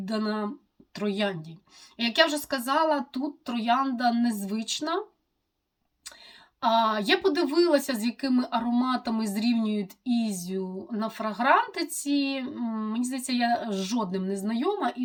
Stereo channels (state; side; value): identical; both; correlation 1.00